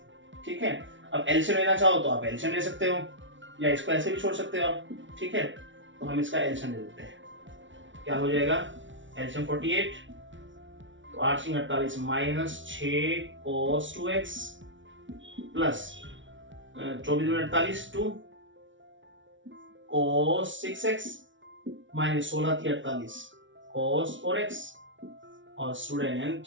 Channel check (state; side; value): late; left; 0.56 ms